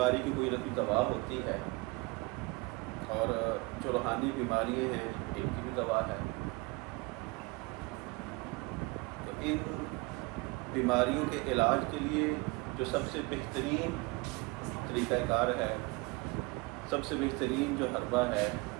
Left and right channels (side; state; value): left; quieter; 25.7 dB